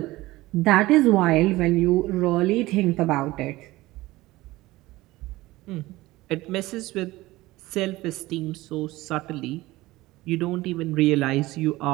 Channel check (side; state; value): left; quieter; 18.7 dB